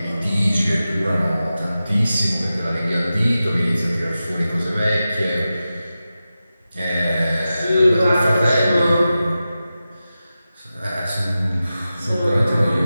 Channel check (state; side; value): inverted; both; correlation -0.93